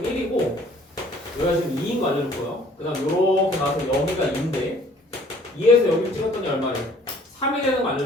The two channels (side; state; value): both; normal; correlation 0.56